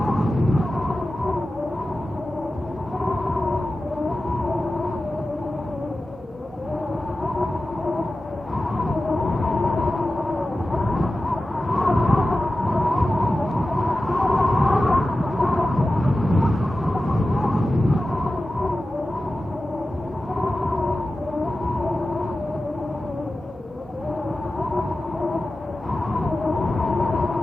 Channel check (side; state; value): both; normal; correlation 0.94